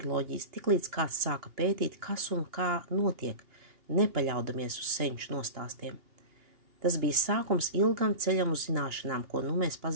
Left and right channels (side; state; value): left; late; 2.9 ms